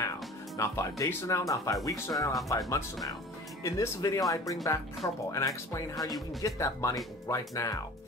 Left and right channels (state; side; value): normal; both; correlation 0.42